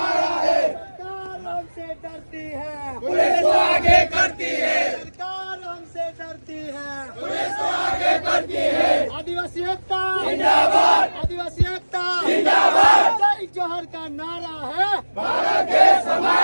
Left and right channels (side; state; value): both; inverted; correlation -1.00